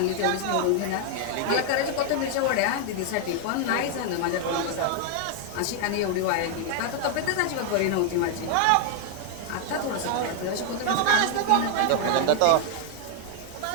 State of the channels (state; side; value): different; both; correlation 0.00